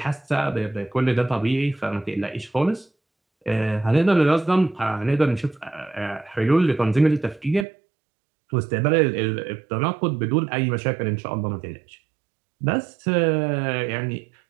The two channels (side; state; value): left; drops out; at 7.7 s